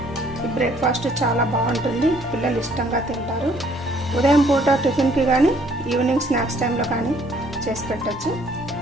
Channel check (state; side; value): normal; both; correlation 0.62